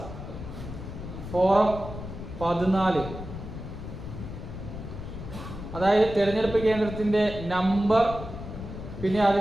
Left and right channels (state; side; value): noise; left; rumble, 9 dB below the sound